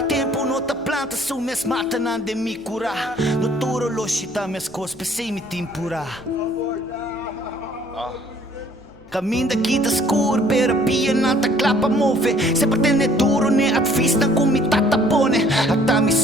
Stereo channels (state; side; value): noise; left; hum, 26 dB below the sound